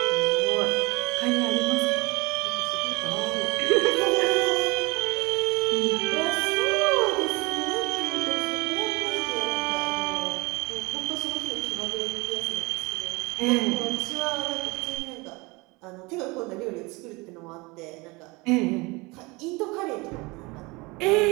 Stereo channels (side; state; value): left; quieter; 24.9 dB